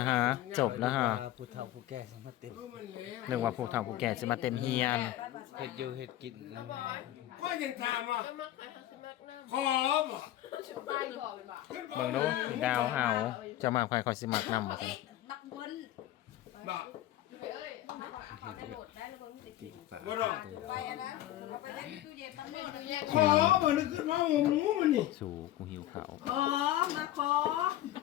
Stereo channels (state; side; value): quieter; right; 13.8 dB